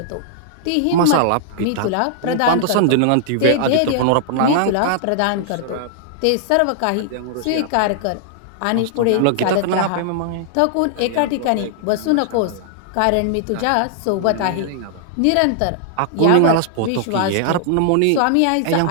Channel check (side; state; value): both; different; correlation -0.01